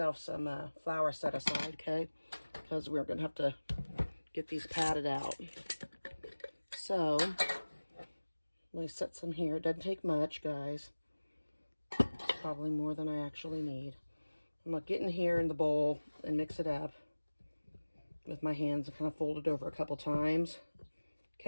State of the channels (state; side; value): inverted; both; correlation -1.00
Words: some flour set aside, okay? Because we're going to have to get these patted out. So, let me set some here. It doesn't take much, guys. It's probably more than I actually need. I'm going to get in here in the bowl and mix it up with my hands and kind of fold it over a couple times.